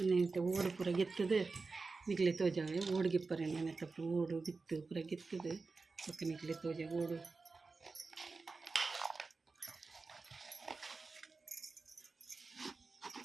ನೆನೆತ ಓಡು ಪೂರ ಗೆತ್ತದು ನಿಕ್ಲೆ ತೋಜಾವೆ ಓಡು ಗಿಪ್ಪರೆ ನೆನೆತಪ್ಪು ಓಡು ಬಿತ್ತು ಪೂರ ಗೆತ್ತದು ಪಕ್ಕ ನಿಕ್ಲೆ ತೋಜ ಓಡು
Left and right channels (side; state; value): left; quieter; 4.1 dB